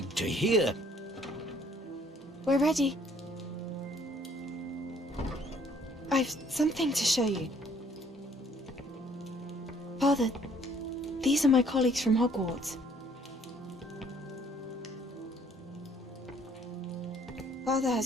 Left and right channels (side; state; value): both; normal; correlation 0.61